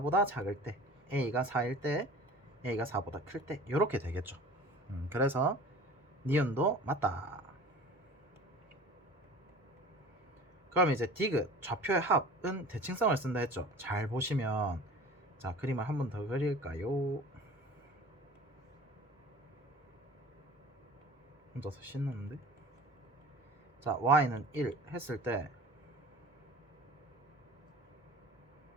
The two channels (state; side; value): normal; both; correlation 0.42